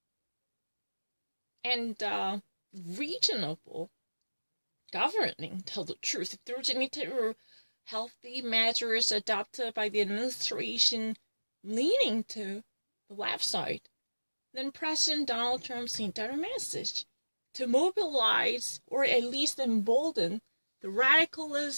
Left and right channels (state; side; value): inverted; both; correlation -1.00